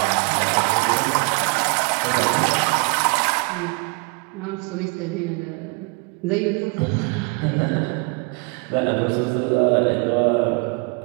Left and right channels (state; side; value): quieter; left; 32.2 dB